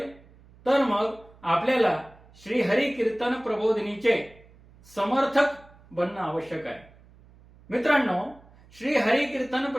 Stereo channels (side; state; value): right; noise; hum, 26 dB below the sound